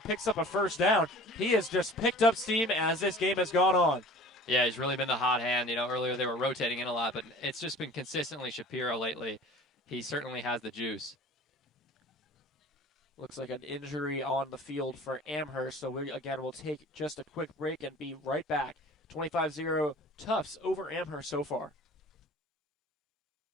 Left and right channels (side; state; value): both; normal; correlation 0.44